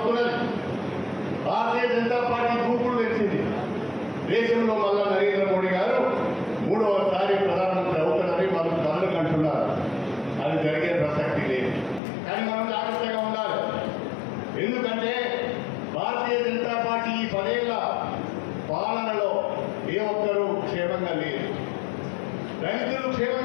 భారతీయ జనతా పార్టీ దూకుడు తెచ్చింది. దేశంలో మళ్ళా నరేంద్ర మోడీ గారు 3వసారి ప్రధానమంత్రి అవుతారని వాళ్ళు కలలు కంటున్నారు. అది జరిగే ప్రసక్తి లేదు. కానీ మనం జాగ్రత్తగా ఉండాలి. ఎందుకంటే భారతీయ జనతా పార్టీ ఈ 10 ఏళ్ల పాలనలో ఏ ఒక్కరూ క్షేమంగా లేరు. దళితులు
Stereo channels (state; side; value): drops out; right; at 12.0 s